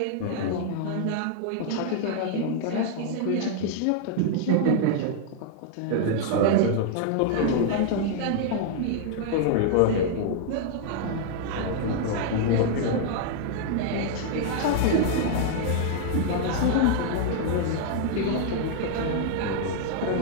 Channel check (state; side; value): different; both; correlation -0.01